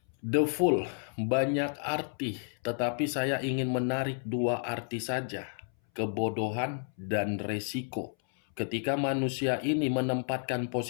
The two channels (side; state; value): right; silent; 57 dB below the other